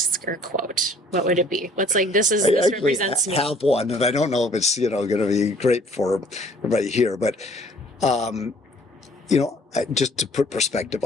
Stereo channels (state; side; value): normal; both; correlation 0.56